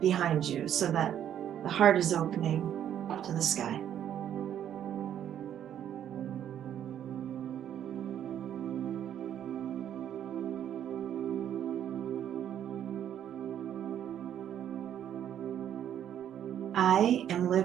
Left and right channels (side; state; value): left; quieter; 10.2 dB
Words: you so that the heart is opening up to the sky. I am